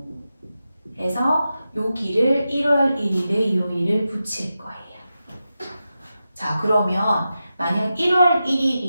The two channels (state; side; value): inverted; both; correlation -0.91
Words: 해서 여기를 1월 1일의 요일을 붙일 거예요. 자, 그러면 만약 1월